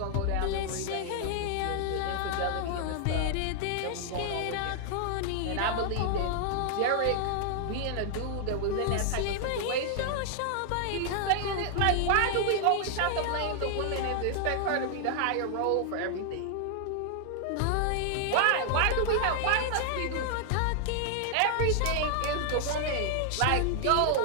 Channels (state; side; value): different; both; correlation 0.00